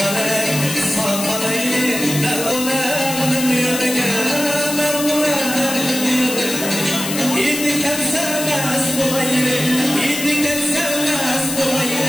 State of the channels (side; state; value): left; noise; hiss, 6 dB below the sound